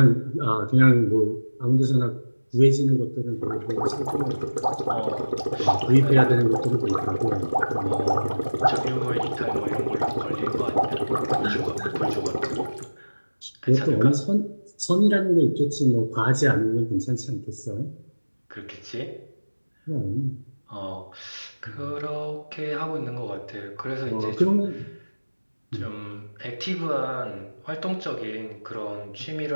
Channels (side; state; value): both; inverted; correlation -1.00